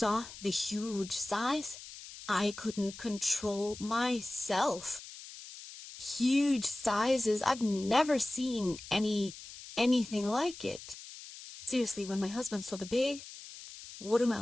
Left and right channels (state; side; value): noise; left; hiss, 14 dB below the sound